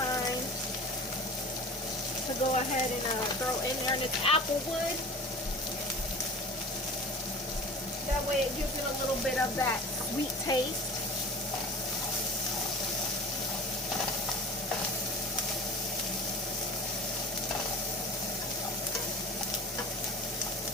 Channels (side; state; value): both; normal; correlation 0.38